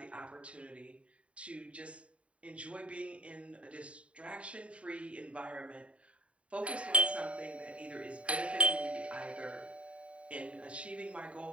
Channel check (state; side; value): late; left; 0.063 ms